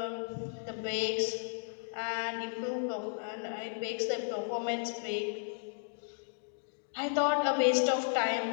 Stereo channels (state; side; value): silent; right; digital silence